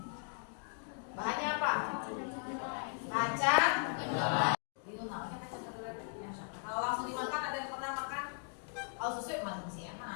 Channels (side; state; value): right; silent; 53 dB below the other